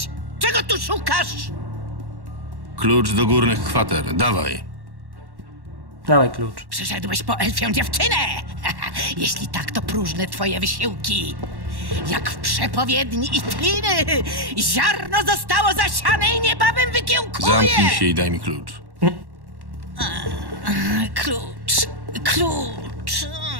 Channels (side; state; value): left; late; 1.1 ms